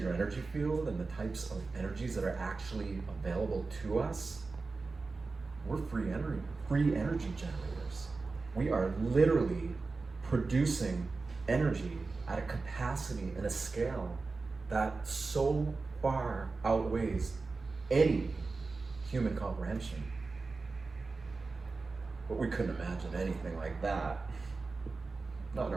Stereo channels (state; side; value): quieter; left; 4.0 dB